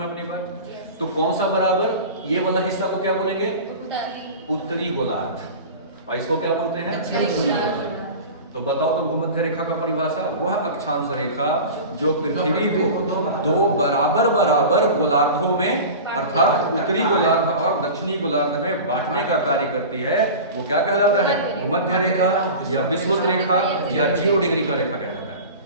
अपनी बात? तो कौन सा बराबर? ये वाला हिस्सा को क्या बोलेंगे? उत्तरी गोलार्ध, और इसको क्या बोलते हैं? दक्षिणी गोलार्ध। तो बताओ तो भूमध्य रेखा का परिभाषा, वह अक्षांश रेखा जो पृथ्वी को 2 बराबर बराबर गोलार्धों में, अर्थात उत्तरी गोलार्ध और दक्षिणी गोलार्ध में बांटने का कार्य करती है, वो क्या कहलाता है? भूमध्य रेखा, या विषुवत रेखा, या 0 डिग्री का रेखा कहलाता है।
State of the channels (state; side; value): inverted; both; correlation -0.33